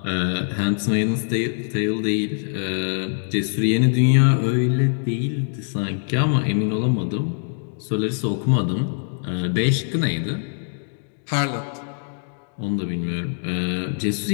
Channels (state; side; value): silent; right; digital silence